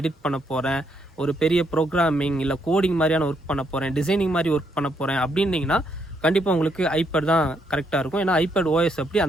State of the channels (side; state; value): both; normal; correlation 0.75